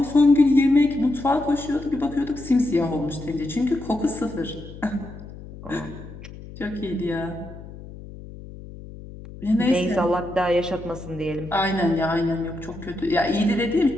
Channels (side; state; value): left; noise; hum, 15 dB below the sound